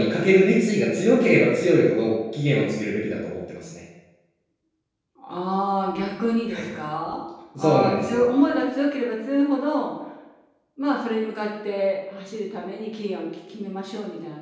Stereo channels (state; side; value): identical; both; correlation 1.00